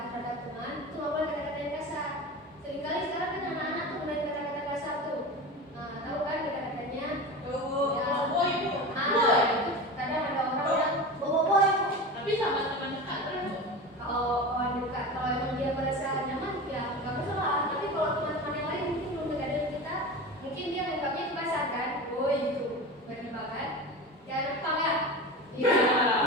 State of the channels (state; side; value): normal; both; correlation 0.28